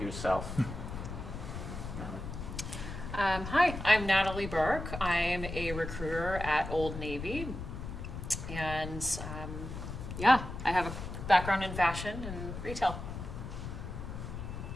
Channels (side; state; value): left; noise; rumble, 7 dB below the sound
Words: Hi, I'm Natalie Burke. I'm a recruiter at Old Navy. And I have a background in fashion and retail.